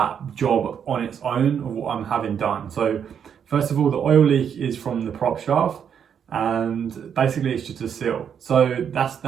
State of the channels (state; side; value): quieter; left; 7.9 dB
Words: job on its own, of what I'm having done. So first of all, the oil leak is from the prop shaft, and basically it's just a seal. So